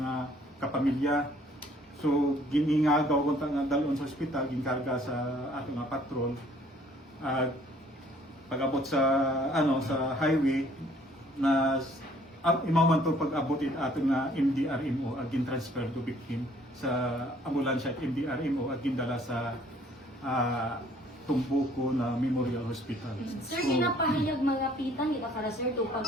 kapamilya. So giningagaw kun nga dalon sa ospital ginkarga sa aton nga patrol at pag-abot sa sa highway na imaman to pag-abot aton nga MDRMO ag transfer to victim sa ambulansya MDRMO ag gindala sa Tumbuko na Memorial Hospital. Sir, ginapahayag mga pitang ita para sir to pag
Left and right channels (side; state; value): both; normal; correlation 0.59